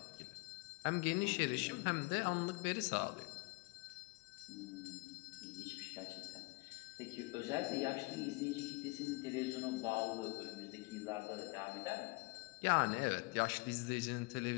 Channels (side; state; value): right; quieter; 25.6 dB